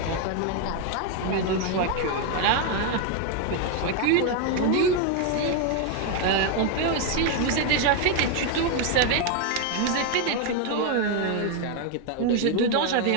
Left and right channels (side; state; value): both; different; correlation 0.01